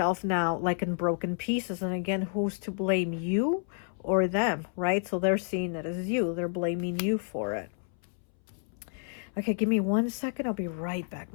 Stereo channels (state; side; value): silent; right; 58 dB below the other